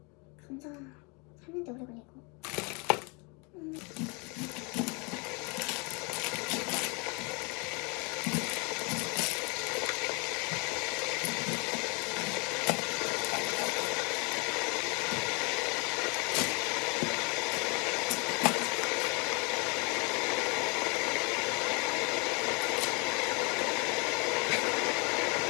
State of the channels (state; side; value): quieter; right; 31.5 dB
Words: 감자 삶는데 오래 걸리고.